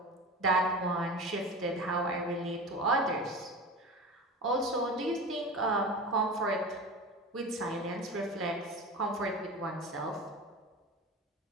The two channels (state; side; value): normal; both; correlation 0.30